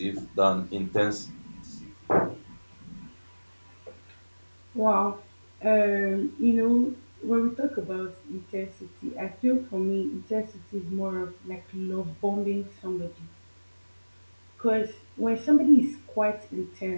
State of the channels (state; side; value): inverted; both; correlation -1.00